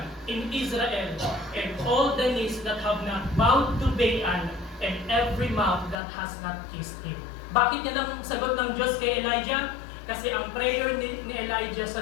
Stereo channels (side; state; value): right; drops out; at 6.0 s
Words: in Israel, and all the knees that have not bowed to Baal, and every mouth that has not kissed him. Bakit yan ang sagot ng Diyos kay Elijah? Kasi ang prayer ni Elijah